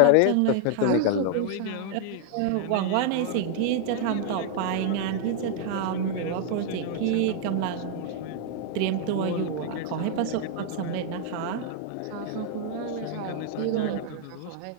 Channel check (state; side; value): different; both; correlation 0.00